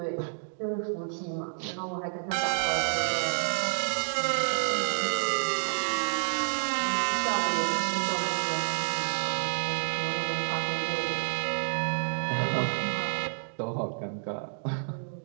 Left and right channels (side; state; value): left; silent; digital silence